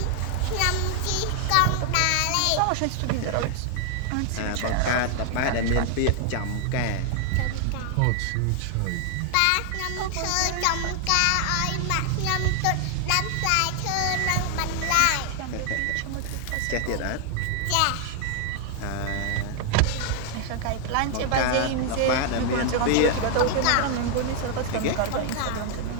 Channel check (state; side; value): different; both; correlation 0.00